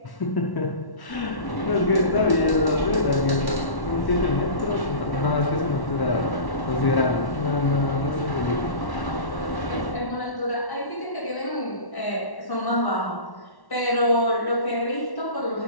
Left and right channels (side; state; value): right; late; 1.1 ms